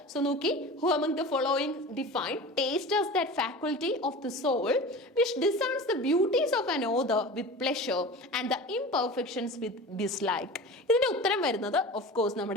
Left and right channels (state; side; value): normal; both; correlation 0.34